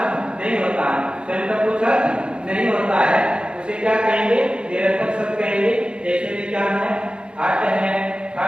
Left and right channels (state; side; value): late; left; 0.054 ms